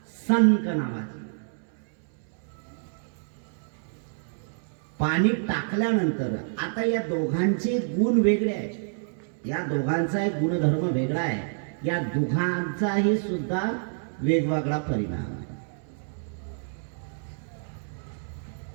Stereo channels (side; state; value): left; silent; 59 dB below the other